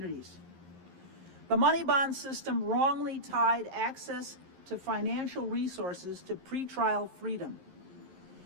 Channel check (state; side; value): late; left; 11 ms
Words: The money bond system wrongly tied access to financial resources to pretrial freedom.